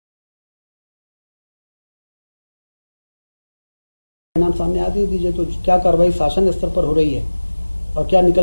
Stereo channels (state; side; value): inverted; both; correlation -1.00